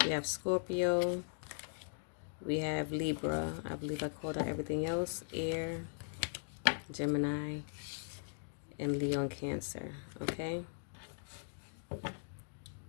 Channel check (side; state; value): right; silent; digital silence